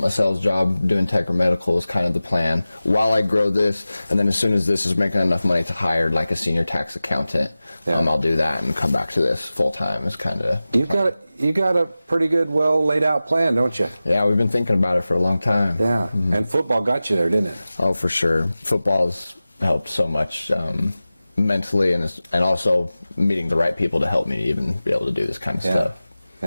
sales job doing tech or medical is kind of the plan while I grow this, and then as soon as this is making enough money to hire like a senior tax accountant, I'll do that and come back to this full time. Is kind of you got a pretty good, well laid out plan, don't you? Yeah, we've been thinking about it for a long time. Yeah, and football got you there, didn't it? Oh, for sure. Football has helped so much mentally, and also meeting the right people to help me even be able to do this kind of stuff.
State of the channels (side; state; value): both; inverted; correlation -0.96